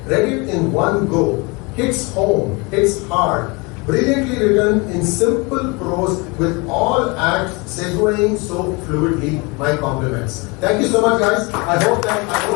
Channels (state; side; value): quieter; right; 28.0 dB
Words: Read it in one go. Hits home, hits hard. Brilliantly written in simple prose with all acts segueing so fluidly. My compliments. Thank you so much, guys. I hope that I